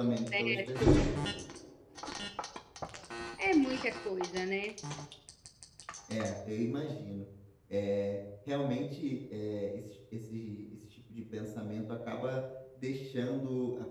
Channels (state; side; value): identical; both; correlation 1.00